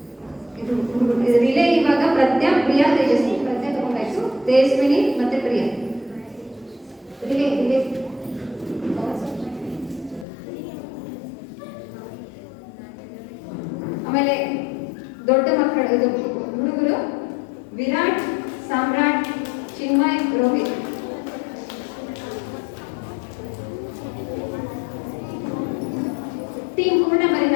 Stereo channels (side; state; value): right; drops out; at 10.2 s